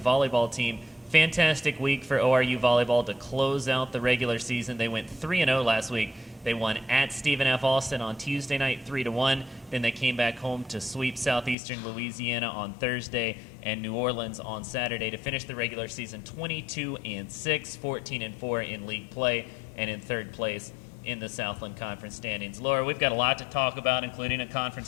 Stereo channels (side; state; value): right; drops out; at 11.6 s